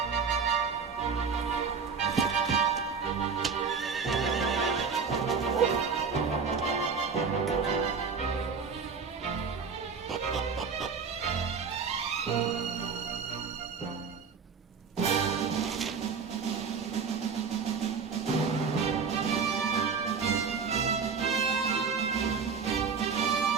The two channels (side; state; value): left; quieter; 5.6 dB